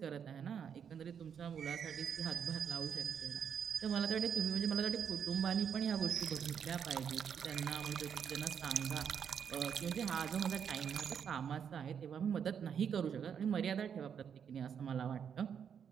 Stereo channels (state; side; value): quieter; left; 7.7 dB